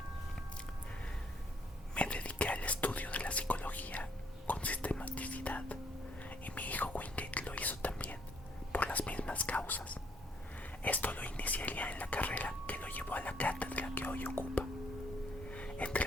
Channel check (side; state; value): both; normal; correlation 0.68